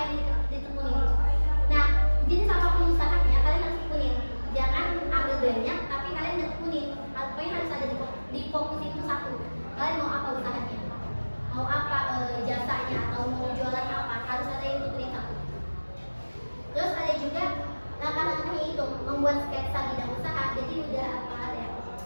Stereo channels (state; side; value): inverted; both; correlation -1.00